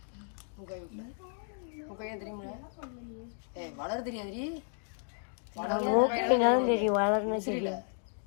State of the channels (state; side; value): silent; right; 56 dB below the other